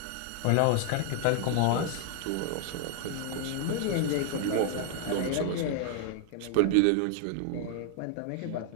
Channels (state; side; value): different; both; correlation 0.00